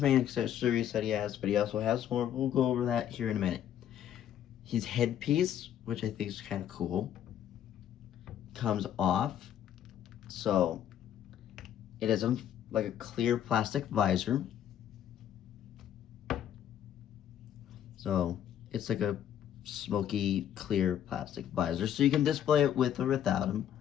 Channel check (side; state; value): right; quieter; 10.3 dB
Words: accessories that he has, but he also has more. We'll go over that here in a minute. His headpiece, which I think is kind of cool, comes off. So it is like a clear plastic visor. So it's like a smoky, clear plastic visor. So you can display it with or without him.